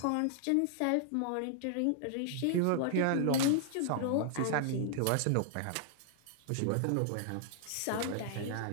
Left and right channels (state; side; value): different; both; correlation -0.01